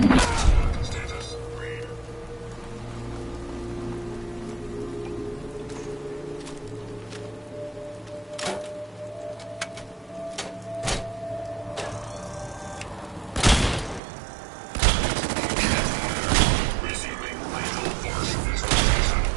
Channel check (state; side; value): drops out; left; at 14.0 s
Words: read. Resuming lethal force installation